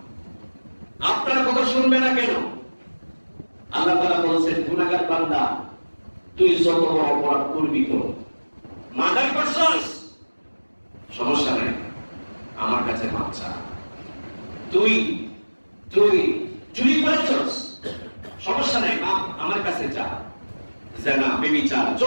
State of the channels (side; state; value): both; inverted; correlation -1.00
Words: আপনার কথা শুনবে না কেন? আল্লাহ তাআলা বলেছেন, গুনাহগার বান্দা তুই যত বড় অপরাধ করবি তো, মার্ডার করছস, সমস্যা নাই, আমার কাছে মাপ চা। তুই চুরি করেছস, সমস্যা নাই, মাপ আমার কাছে চা। জানা বেবিচার